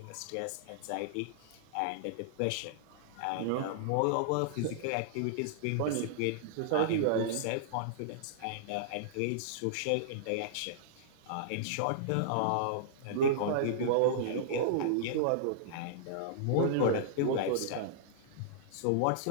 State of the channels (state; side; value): different; both; correlation -0.02